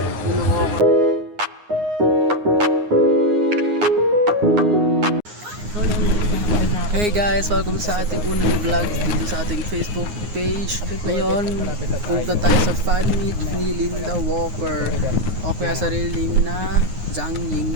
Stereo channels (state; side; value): late; left; 9.6 ms